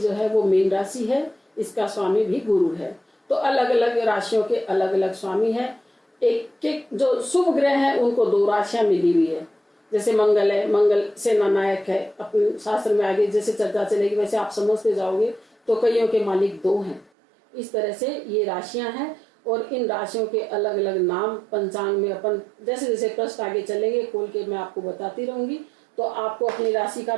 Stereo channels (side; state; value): left; drops out; at 17.1 s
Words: है वो मीन राशि है, इसका स्वामी भी गुरु है। तो अलग अलग राशियों के अलग अलग स्वामी है। एक एक जो शुभ ग्रह है उनको 2 राशियां मिली हुई है, जैसे मंगल है, मंगल सेना नायक है। अपने शास्त्र में आगे जैसे चर्चा चलेगी वैसे आप समझते जाओगे, तो कईयों के मालिक 2 हैं। इस तरह से ये राशियां हैं और इन राशियों के अलग अलग नाम पंचांग में अपन जैसे जैसे प्रश्न आगे चलेंगे खोल के मैं आपको बताती रहूंगी, तो आपको अपनी राशि का